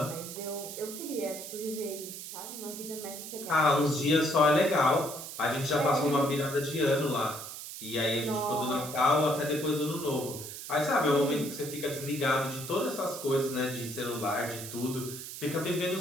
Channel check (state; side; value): noise; right; hiss, 10 dB below the sound